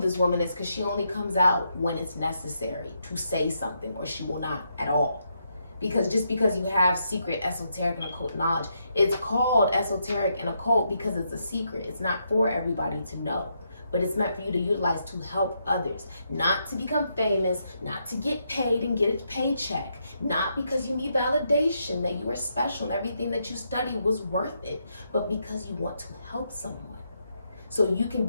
woman is because she only comes out when it's necessary to say something, or she will not at all. Because just because you have secret esoteric and occult knowledge, it's called esoteric and occult because it's a secret. It's not for everybody to know, but it's meant for you to utilize to help others, not to become famous, not to get paid and get a paycheck, not because you need validation that you are special and everything that you studied was worth it, but because you want to help someone. so you can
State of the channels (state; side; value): inverted; both; correlation -0.79